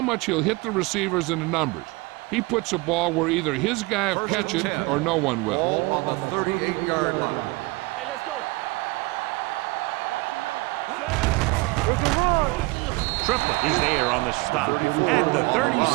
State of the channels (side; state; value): left; quieter; 23.6 dB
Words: much he'll hit the receivers and the numbers. He puts the ball where either his guy will First catch and it 10. or no one will. Ball on the 38-yard line. Hey, let's go. Watch your man. It's a run. Triplett is there on the stop at the